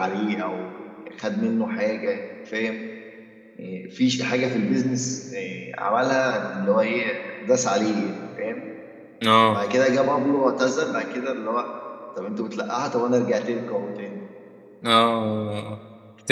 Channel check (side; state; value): both; identical; correlation 1.00